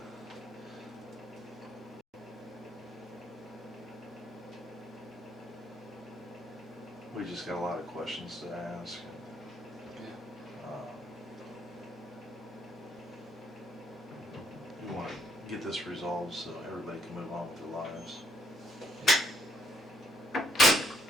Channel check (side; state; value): both; normal; correlation 0.71